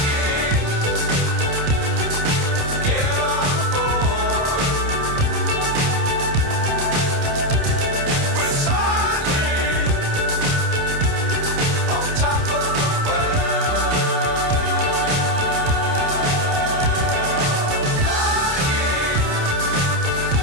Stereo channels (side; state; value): left; late; 29 ms